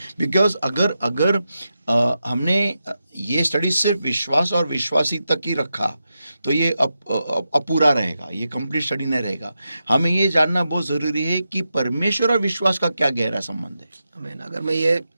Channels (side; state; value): both; inverted; correlation -0.88